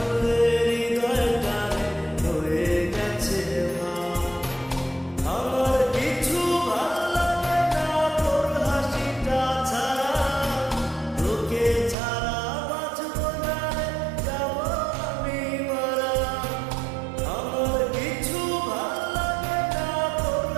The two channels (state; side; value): drops out; left; at 12.0 s